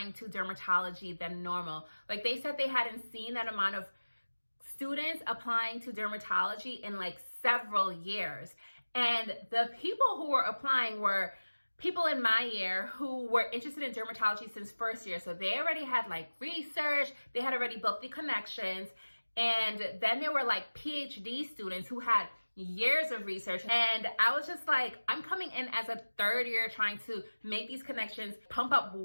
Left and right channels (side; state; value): both; inverted; correlation -1.00